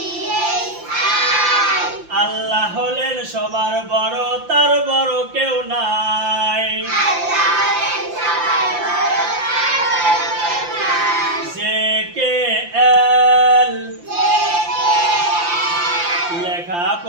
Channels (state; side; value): late; left; 5.8 ms